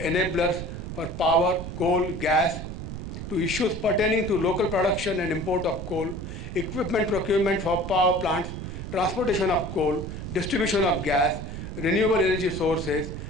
enablers for power, coal, gas, to issues pertaining to local production and import of coal, equipment procurement for power plants, transportation of coal, distribution of gas, renewable energy sources,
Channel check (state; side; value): noise; right; rumble, 7 dB below the sound